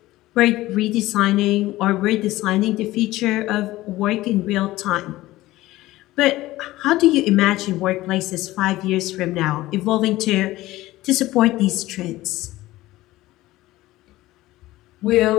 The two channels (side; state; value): right; quieter; 17.2 dB